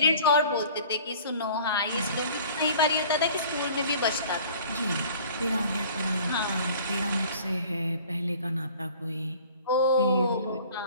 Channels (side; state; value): both; inverted; correlation -0.48